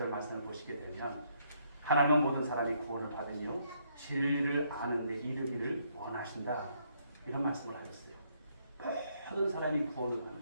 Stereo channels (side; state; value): both; inverted; correlation -0.71